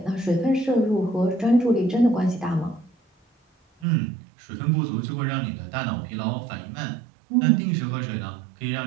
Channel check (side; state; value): left; drops out; at 3.9 s